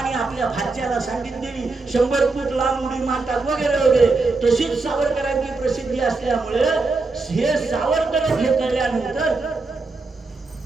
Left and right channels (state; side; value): quieter; left; 3.7 dB